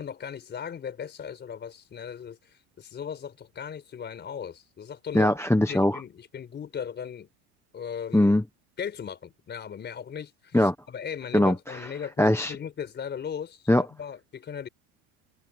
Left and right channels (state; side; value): normal; both; correlation 0.84